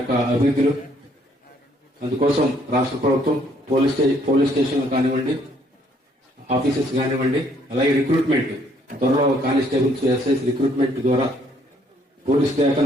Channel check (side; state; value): both; normal; correlation 0.66